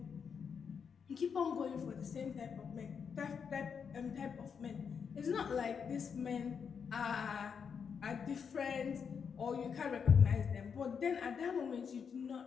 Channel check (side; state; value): right; quieter; 6.6 dB